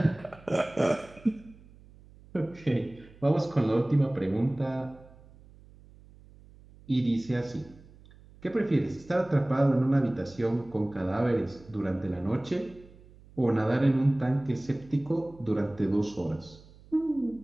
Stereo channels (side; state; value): right; noise; hum, 23 dB below the sound